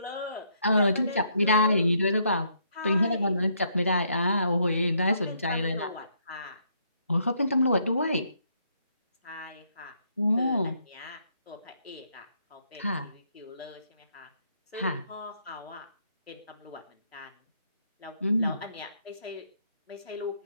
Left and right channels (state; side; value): inverted; both; correlation -0.72